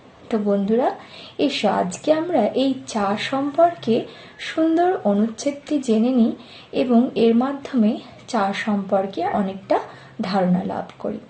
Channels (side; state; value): both; identical; correlation 1.00